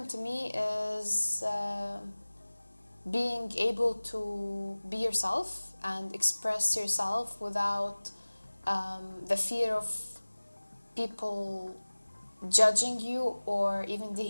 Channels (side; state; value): both; inverted; correlation -1.00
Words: to me is being able to be yourself and express yourself without the fear of people judging you or even